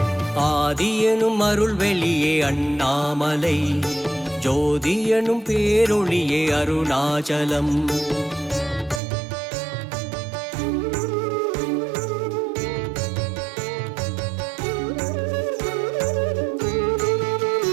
ஆதி எனும் அருள் வெளியே அண்ணாமலை, ஜோதி எனும் பேரொளியே அருணாச்சலம்.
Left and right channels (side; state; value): left; drops out; at 9.0 s